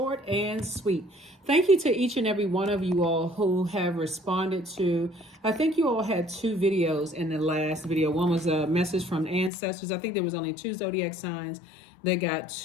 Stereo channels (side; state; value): right; drops out; at 9.5 s